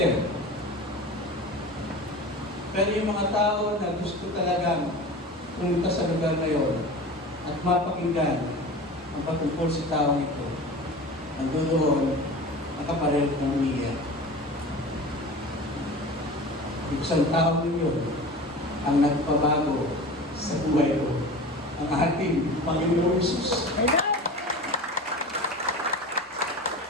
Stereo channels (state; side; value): normal; both; correlation 0.34